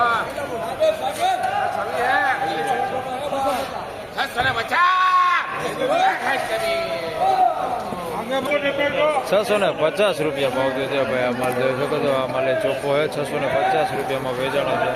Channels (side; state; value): both; identical; correlation 1.00